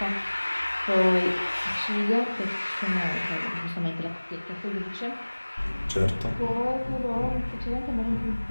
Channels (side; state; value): both; inverted; correlation -1.00